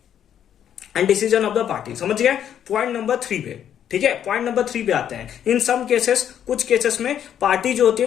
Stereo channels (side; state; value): right; quieter; 9.6 dB